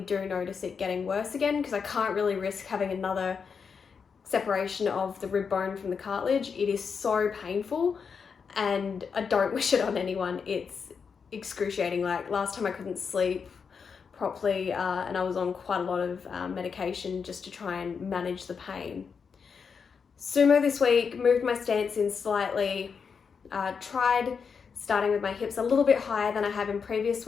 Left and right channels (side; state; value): right; quieter; 6.0 dB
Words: do notice it getting worse again, because I can't really risk having another separation of the rib bone from the cartilage. It is so painful and I don't wish it on anyone. It's excruciating. Like last time I couldn't sleep properly and I was on quite a lot of medication just to try and manage the pain. Sumo this week, moved my stance in slightly, tried starting with my hips a little bit higher than I have in previous